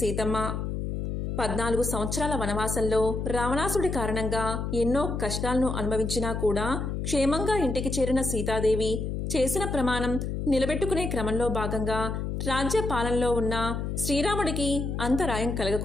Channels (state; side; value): noise; left; hum, 3 dB below the sound